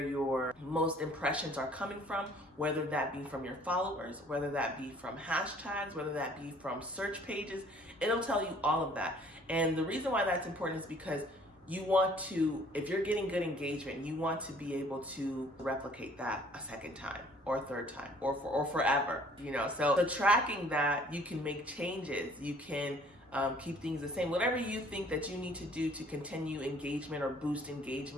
your most impressions are coming from, whether that be from your followers, whether that be from hashtags, whether that be from search pages. It'll tell you all of that. And the reason why that's important is because you want to, if you're getting good engagement, you want to be able to replicate that a second time or a third time or forever, So tracking that, you can make changes. You can keep things the same. Whatever you think that you need to do to continue engagement or boost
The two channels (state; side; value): normal; both; correlation 0.56